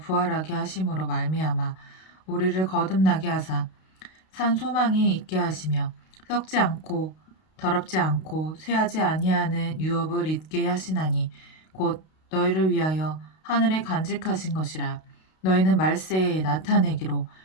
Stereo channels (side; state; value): right; late; 32 ms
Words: 하심으로 말미암아 우리를 거듭나게 하사 산 소망이 있게 하시며 썩지 않고 더럽지 않고 쇠하지 아니하는 유업을 잊게 하시나니 곧 너희를 위하여 하늘에 간직하신 것이라. 너희는 말세에 나타내기로